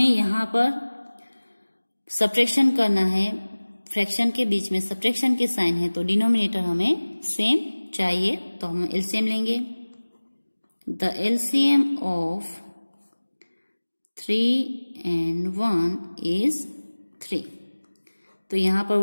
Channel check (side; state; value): both; inverted; correlation -1.00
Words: यहाँ पर सब्ट्रैक्शन करना है, फ्रैक्शन के बीच में सब्ट्रैक्शन के साइन है तो डिनोमिनेटर हमें सेम चाहिए, तो हम एलसीएम लेंगे। The LCM of 3 and 1 is 3। तो यहाँ पर